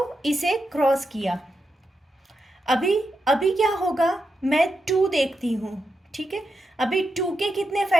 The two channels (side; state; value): both; normal; correlation 0.86